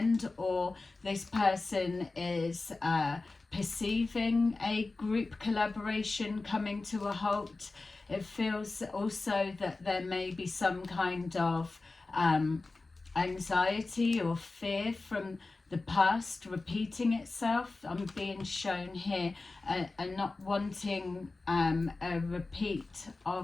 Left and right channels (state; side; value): quieter; right; 3.5 dB